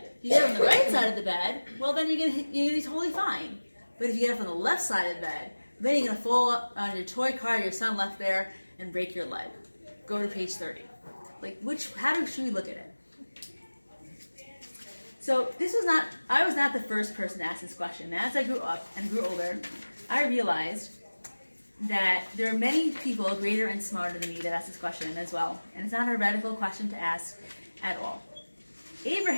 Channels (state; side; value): inverted; both; correlation -1.00